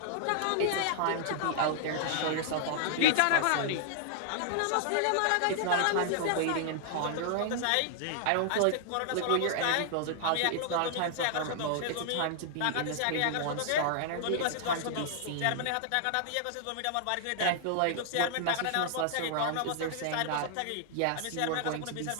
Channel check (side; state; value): both; different; correlation -0.01